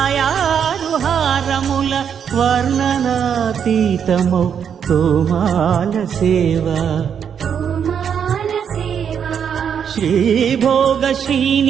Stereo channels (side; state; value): left; quieter; 7.8 dB